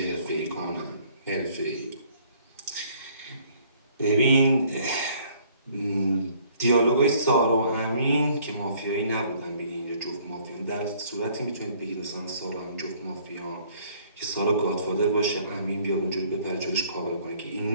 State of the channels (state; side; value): inverted; both; correlation -0.60